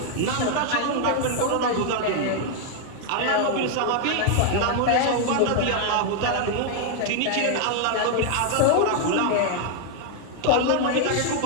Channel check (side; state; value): both; different; correlation 0.00